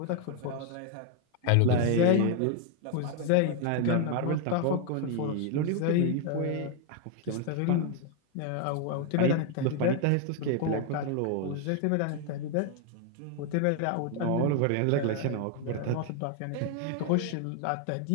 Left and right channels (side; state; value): both; different; correlation 0.01